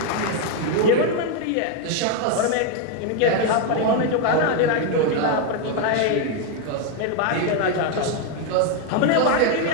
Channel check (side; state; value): both; different; correlation 0.02